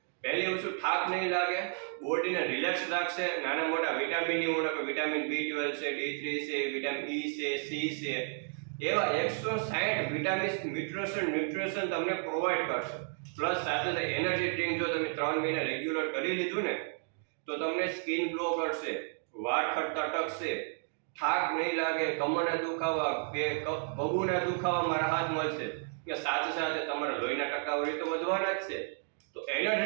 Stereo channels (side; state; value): left; silent; 56 dB below the other